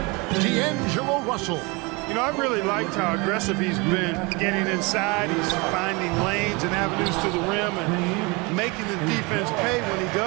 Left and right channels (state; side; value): quieter; left; 27.3 dB